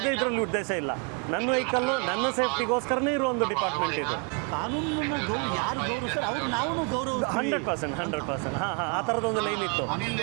ಇದರಲ್ಲಿ ಉದ್ದೇಶ ಇಲ್ಲ. ನನ್ನ ವೆಹಿಕಲ್ ನನ್ನ ಸೇಫ್ಟಿಗೋಸ್ಕರನೇ ಇರೋ ಒಂದು ಡಿಪಾರ್ಟ್ಮೆಂಟ್ ಇದು. ಕಾನೂನನ್ನ ಯಾರು ಗೌರವಿಸ್ತಾರೆ ಅವರು ನಾವು ಗೌರವಿಸ್ತೀವಿ. 100%. ಆ ಥರದ ಒಂದು ಲೈನ್ ಇತ್ತು. ಕಾನೂನು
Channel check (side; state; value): left; quieter; 33.6 dB